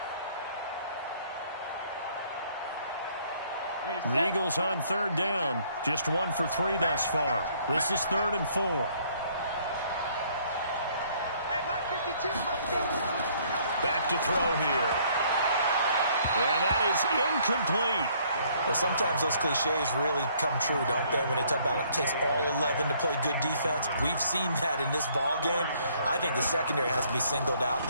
The Eagles on third down. Just 1 for 3 thus far. This is 3rd and 4. Hey, Mike 52, Back to throw here. And that is incomplete. Well, sometimes those cliches really come true, don't they, when they talk about it takes all 11 to play good defense. We've seen that in this ball game. I think the secondary has to be singled out,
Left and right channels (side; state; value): both; inverted; correlation -0.63